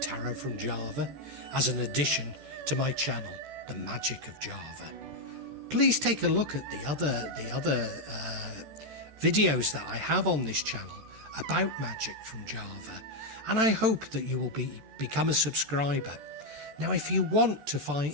from Java as an addition to my channel, The Magic of Java. Please take a look at the other videos that I have on this channel about magic from Java, and I hope that you will become a subscriber. Now, if you want to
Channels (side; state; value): left; late; 14 ms